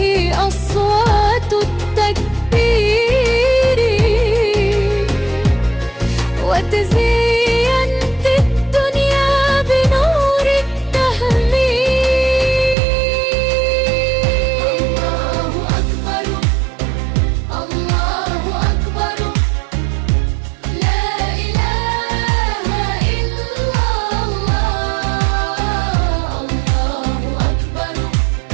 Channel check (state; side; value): drops out; left; at 12.8 s